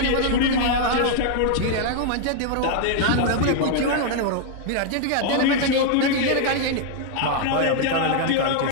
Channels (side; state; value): both; different; correlation 0.00